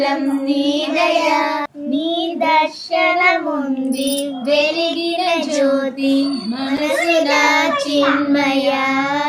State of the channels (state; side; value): identical; both; correlation 1.00